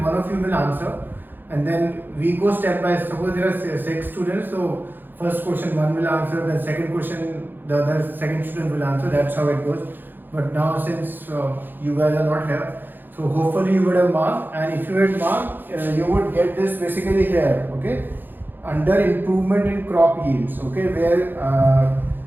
one of you will answer. And then we go step by step. Suppose there are 6 students, so first question one will answer, the second question the other second student will answer. That's how it goes. But now since you guys are not here, so hopefully you would have marked, and if you had marked, you would get this basically here, okay, under improvement in crop yields, okay, where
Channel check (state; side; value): late; left; 0.092 ms